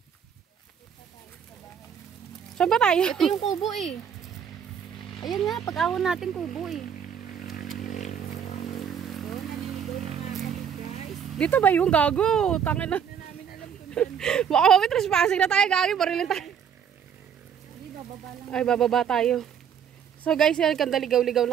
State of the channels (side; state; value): left; quieter; 8.0 dB